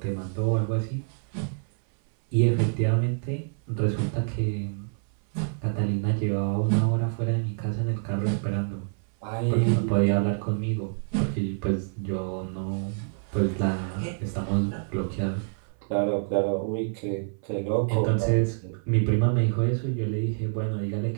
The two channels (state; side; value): silent; left; 60 dB below the other